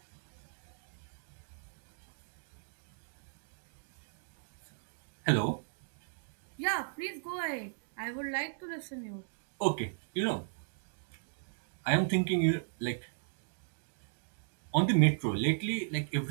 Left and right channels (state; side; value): silent; left; digital silence